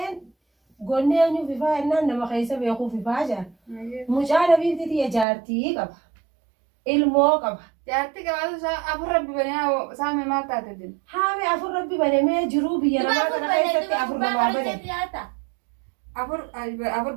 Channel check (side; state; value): left; drops out; at 5.2 s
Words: gonnee eenyu fifaa ennaan nama keessa beekuu fifaa jira. Mucaa nabiitti jaartii qaba. Ilmoo qaba. Jaartii qabaatu afur rabbi banee saame maal taate din. Haami afur rabbi banamee jiruu biyya namaa kana keessatti afur namaa bane.